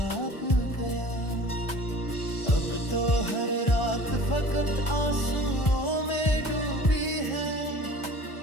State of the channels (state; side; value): late; right; 1.3 ms